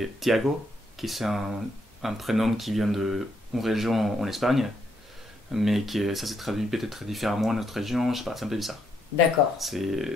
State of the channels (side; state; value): both; normal; correlation 0.75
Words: Tiago, qui c'est un prénom qui vient d'une région en Espagne, mais ça s'est traduit peut-être différemment dans notre région, je sais pas, c'est un peu bizarre. D'accord.